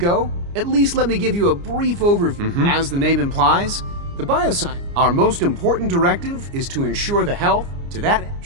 at least let me give you a brief overview. As the name implies, The bioscience. Our most important directive is to ensure the health. To that end,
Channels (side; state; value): left; late; 29 ms